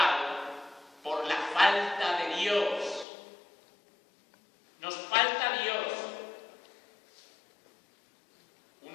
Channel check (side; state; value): right; drops out; at 3.1 s